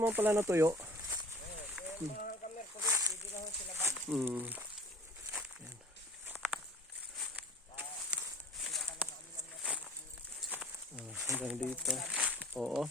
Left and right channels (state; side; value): normal; both; correlation 0.45